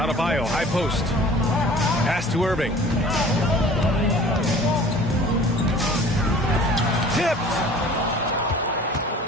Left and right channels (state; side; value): normal; both; correlation 0.47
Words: high post. Pass to Irving. Tipped.